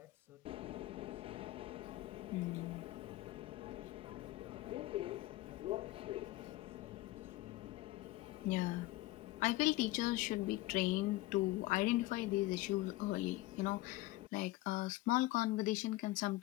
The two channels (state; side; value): quieter; right; 18.4 dB